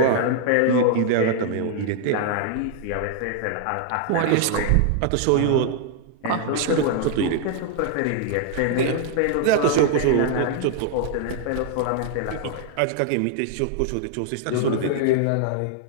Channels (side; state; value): both; different; correlation 0.00